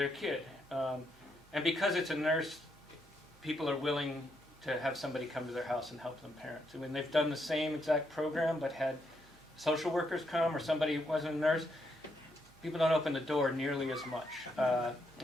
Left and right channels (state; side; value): noise; right; hum, 28 dB below the sound